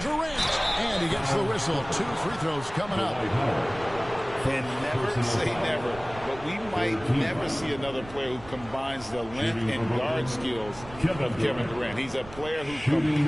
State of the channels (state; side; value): noise; right; rumble, 17 dB below the sound